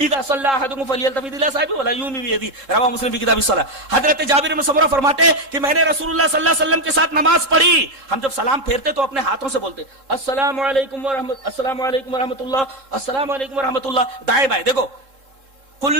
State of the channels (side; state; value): left; late; 3.7 ms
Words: صلى احدكم فليلتفت الى صاحبه ولا يومي بيده رواه مسلم في كتاب الصلاة۔ حضرت جابر بن سمرہ فرماتے ہیں کہ میں نے رسول اللہ صلی اللہ علیہ وسلم کے ساتھ نماز پڑھی، ہم جب سلام پھیرتے تو اپنے ہاتھوں سے بولتے السلام علیکم ورحمۃ السلام علیکم ورحمۃ اللہ السلام علیکم ورحمۃ اللہ، دائیں بائیں۔ دیکھو